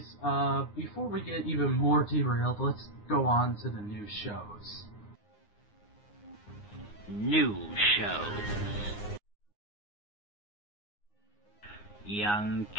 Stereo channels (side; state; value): right; late; 9.7 ms